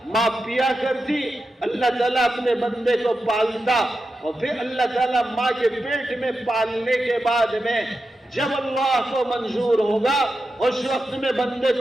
ماں پیا کرتی، اللہ تعالیٰ اپنے بندے کو پالتا۔ اور پھر اللہ تعالیٰ ماں کے پیٹ میں پالنے کے بعد میں جب اللہ کو منظور ہوگا اس وقت میں بندے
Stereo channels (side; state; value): both; normal; correlation 0.90